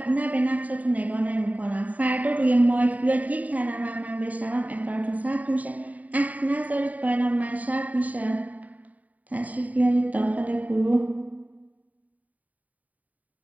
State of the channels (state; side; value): late; left; 0.073 ms